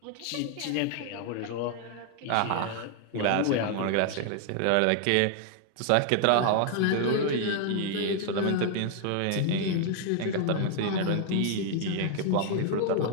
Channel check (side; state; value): both; different; correlation 0.00